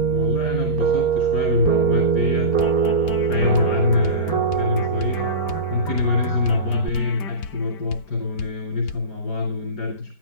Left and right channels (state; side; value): late; right; 5.2 ms